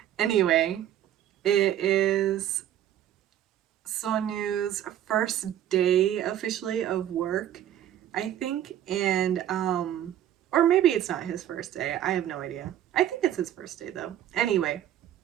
anyway, it is Sonu's first day officially of work, I think, and or maybe it's not his first day. I have no idea. I think it's his first day though. Anyway,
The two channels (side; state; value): left; quieter; 11.4 dB